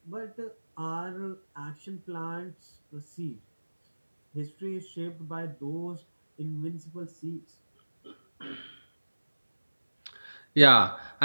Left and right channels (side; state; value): both; inverted; correlation -1.00